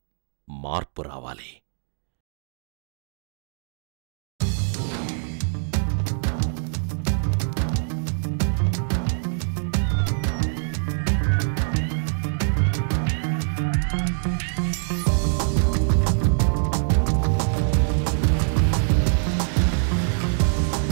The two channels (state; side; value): silent; left; digital silence